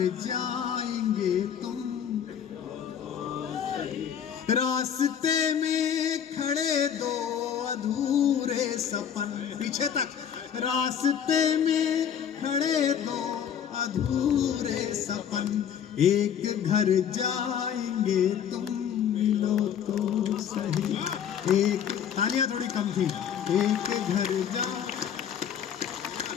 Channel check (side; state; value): right; quieter; 8.5 dB